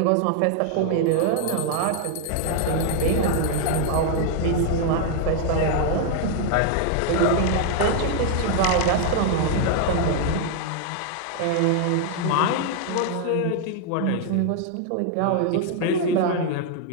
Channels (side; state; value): both; different; correlation 0.00